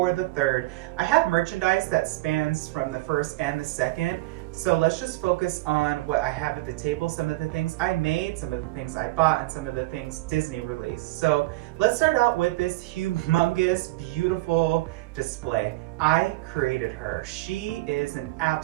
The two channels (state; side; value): quieter; left; 19.9 dB